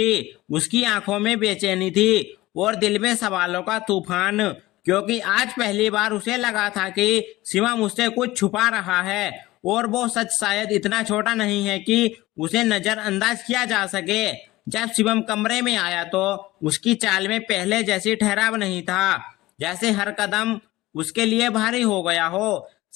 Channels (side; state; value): right; quieter; 18.3 dB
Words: उसकी आंखों में बेचैनी थी और दिल में सवालों का तूफान, क्योंकि आज पहली बार उसे लगा था कि शिवम उससे कुछ छुपा रहा है और वो सच शायद इतना छोटा नहीं है कि उसे नजरअंदाज किया जा सके। जब शिवम कमरे में आया तो उसकी चाल में पहले जैसी ठहराव नहीं था, जैसे हर कदम उसके लिए भारी हो गया हो।